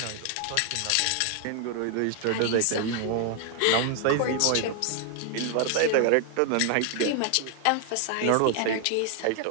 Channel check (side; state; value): both; different; correlation 0.00